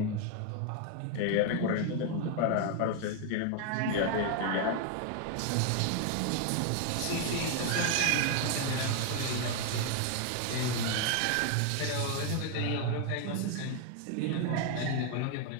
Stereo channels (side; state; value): both; different; correlation 0.01